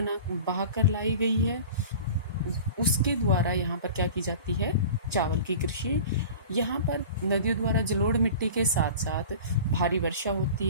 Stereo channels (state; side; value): inverted; both; correlation -0.38